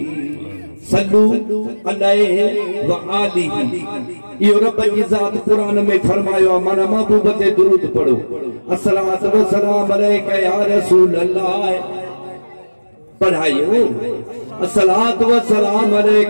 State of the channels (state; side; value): inverted; both; correlation -1.00